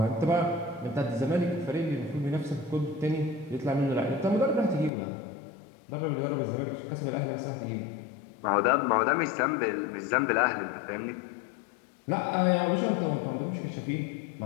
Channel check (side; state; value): right; drops out; at 4.9 s